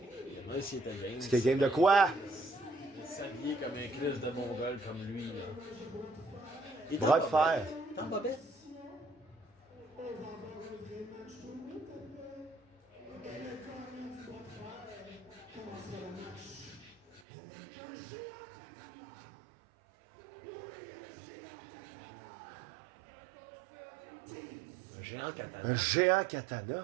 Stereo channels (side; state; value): left; drops out; at 17.2 s